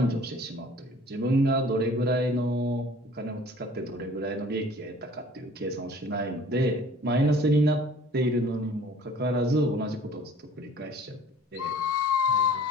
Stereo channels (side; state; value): both; normal; correlation 0.50